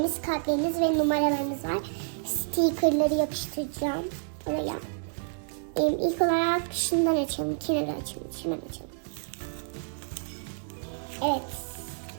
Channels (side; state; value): left; silent; digital silence